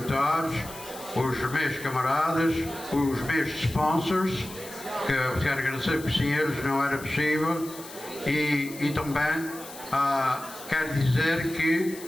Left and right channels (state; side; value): noise; left; hiss, 15 dB below the sound